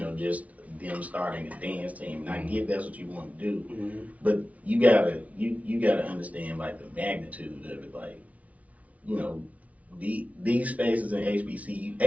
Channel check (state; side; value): late; left; 0.068 ms